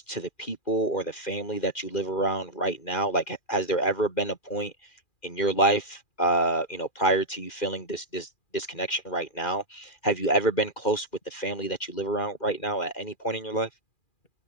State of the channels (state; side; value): late; right; 2.4 ms